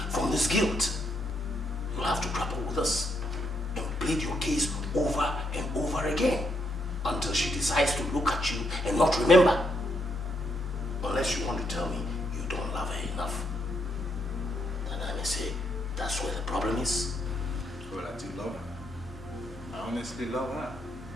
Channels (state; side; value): normal; both; correlation 0.76